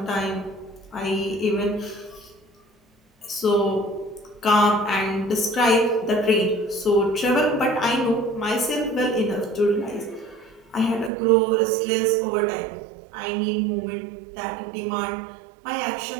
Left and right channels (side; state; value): left; drops out; at 11.1 s